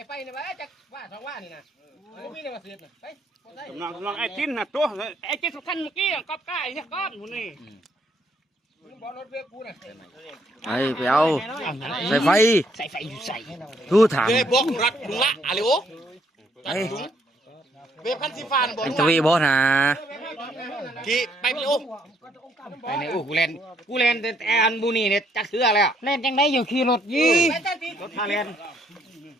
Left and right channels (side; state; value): both; normal; correlation 0.69